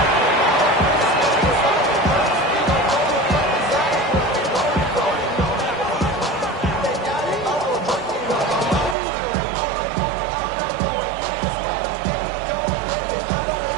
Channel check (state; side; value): drops out; left; at 9.0 s